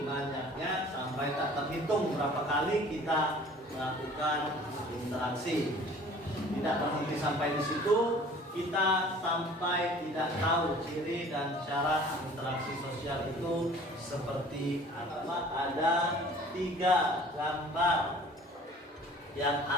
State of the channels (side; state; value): both; normal; correlation 0.49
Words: banyaknya sampai tak terhitung berapa kali kita melakukan interaksi. Tidak berhenti sampai di situ, kita sampai tidak tahu ciri dan syarat interaksi sosial itu seperti apa. Ada 3 gambar yang